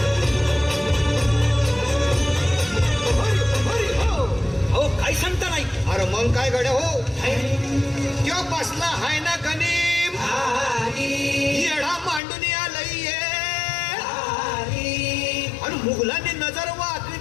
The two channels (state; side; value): drops out; right; at 12.2 s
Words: अहो काय सांगता नाही. अरे मग काय गड्या हो, त्यो बसला हाय ना गणिम, येडा मांडून आलंय आणि मुघलांनी नजर